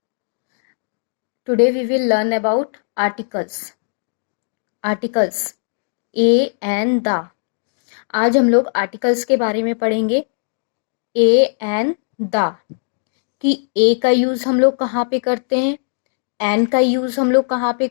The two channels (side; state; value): right; silent; digital silence